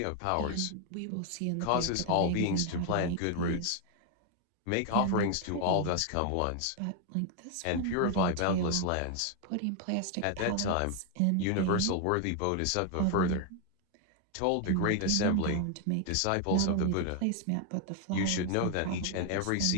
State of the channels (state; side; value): different; both; correlation 0.00